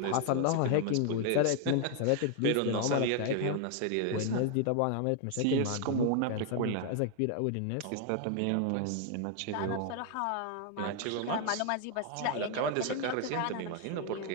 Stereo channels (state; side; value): different; both; correlation 0.00